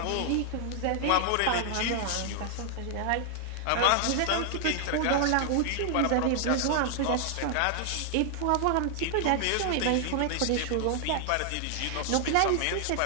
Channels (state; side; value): different; both; correlation 0.00